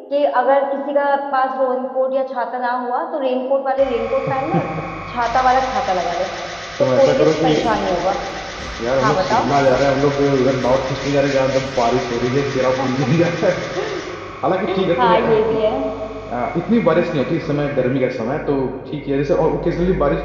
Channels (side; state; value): both; identical; correlation 1.00